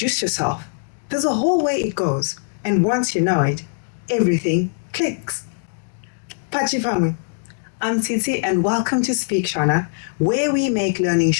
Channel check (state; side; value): silent; right; digital silence